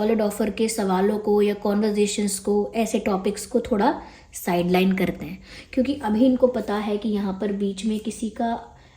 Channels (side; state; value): both; identical; correlation 1.00